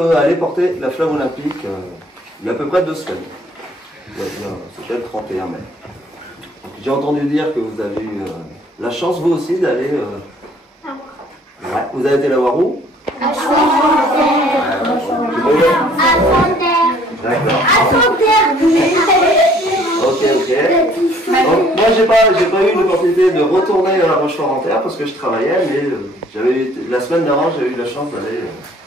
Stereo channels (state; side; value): normal; both; correlation 0.58